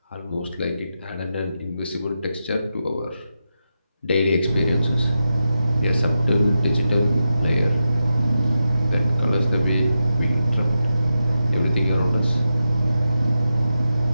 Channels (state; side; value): inverted; both; correlation -0.89